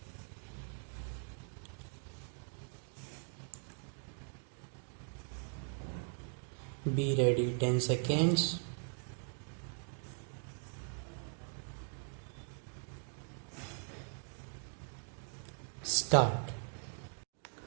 Be ready. 10 seconds. Start.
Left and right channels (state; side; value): silent; left; 51 dB below the other